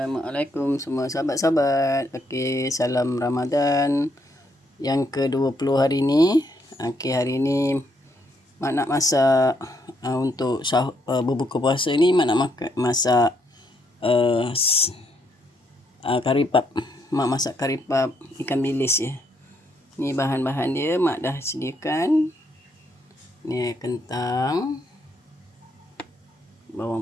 semua sahabat-sahabat. Okey, salam Ramadan yang ke-20 hari ni. Okey, hari ni mak nak masak untuk berbuka puasa ni, mak nak masak kari pap. Mak masak kari pap ikan bilis ya. Ni bahan-bahan dia mak dah sediakan. Ni kentang,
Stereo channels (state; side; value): normal; both; correlation 0.74